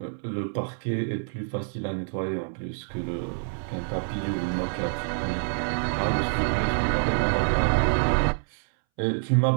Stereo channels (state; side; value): silent; left; 60 dB below the other